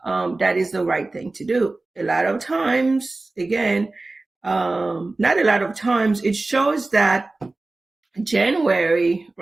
that is the right thing to do. A lot of times, again, not a lot of times, it shows that January,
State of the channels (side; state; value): left; quieter; 3.2 dB